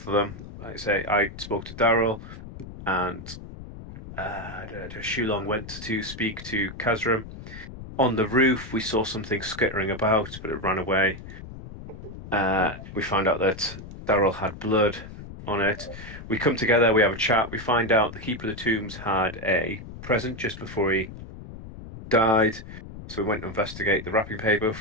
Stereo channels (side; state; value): left; noise; rumble, 13 dB below the sound